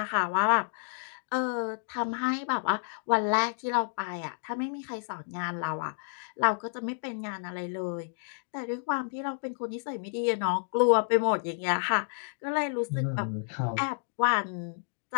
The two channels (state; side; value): silent; right; digital silence